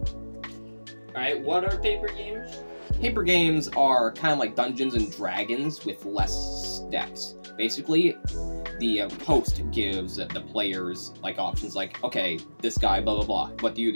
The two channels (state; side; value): inverted; both; correlation -1.00